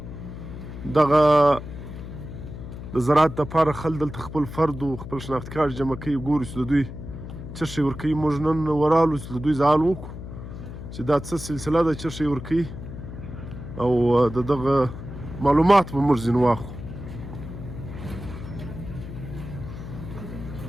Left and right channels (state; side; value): noise; left; hum, 10 dB below the sound